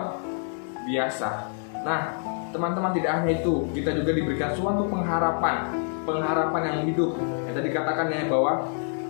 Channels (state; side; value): silent; right; 61 dB below the other